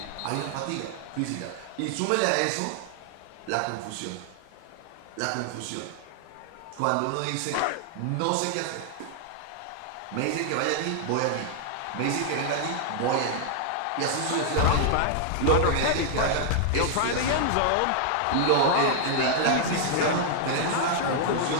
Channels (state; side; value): different; both; correlation -0.01